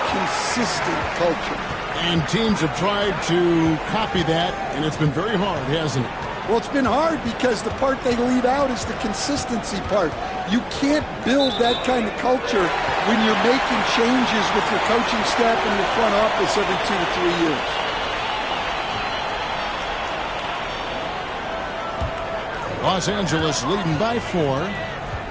consistent culture. And teams have tried to copy that, and it's been very hard, hasn't it? Well, it's been hard because the part they leave out is the consistency part. You can't build that kind of culture when you're making changes with your coaching staff and your front office every 2 to 3 years. Los Angeles leading by 4.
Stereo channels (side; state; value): both; identical; correlation 1.00